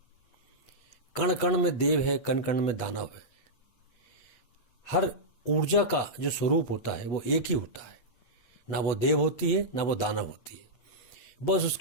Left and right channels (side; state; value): right; late; 8.3 ms